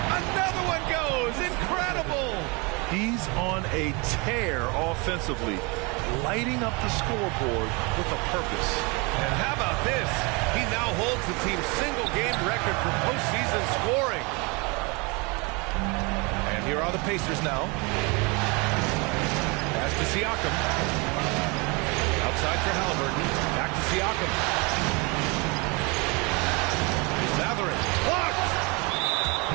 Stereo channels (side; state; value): left; quieter; 28.9 dB